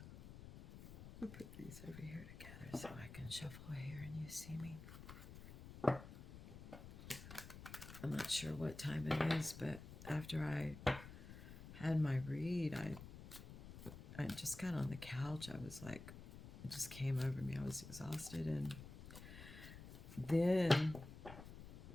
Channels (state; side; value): noise; left; rumble, 13 dB below the sound